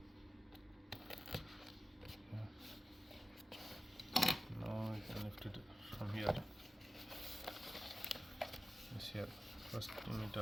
No, you can lift it from here. This here. First you need to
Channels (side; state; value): both; normal; correlation 0.95